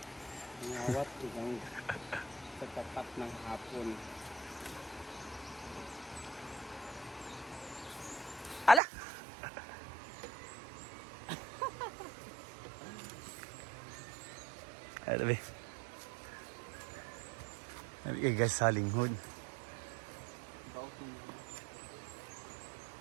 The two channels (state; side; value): drops out; left; at 8.8 s